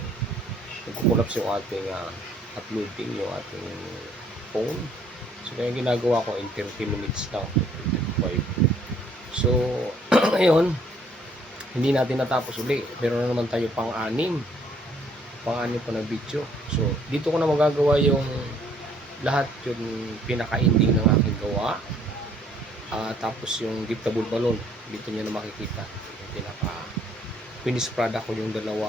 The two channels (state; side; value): normal; both; correlation 0.63